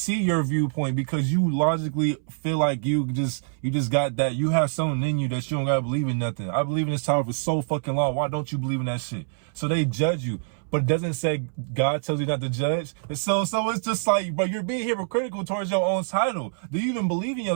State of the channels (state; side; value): silent; left; 61 dB below the other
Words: your viewpoint because you logically feel like you just got that. You have something in you that you don't gotta believe in nothing. I believe in this tower for so fucking long. Why don't you believe in that shit? So they judge you. But it doesn't say God tells you not to judge. And so it's just like, bro, you're being hypocritical towards your own title. Do you even believe in